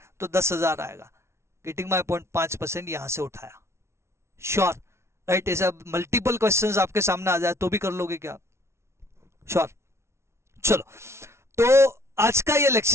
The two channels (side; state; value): left; late; 0.13 ms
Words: तो 10,000 आएगा। Getting my point? 5% यहां से उठाया। Sure, right. ऐसा मल्टीपल क्वेश्चंस आपके सामने आ जाए तो भी कर लोगे क्या? श्योर। चलो, तो आज का ये